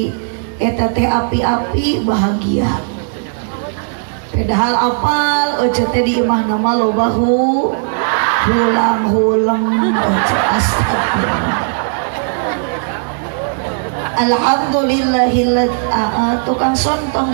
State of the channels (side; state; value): left; silent; 60 dB below the other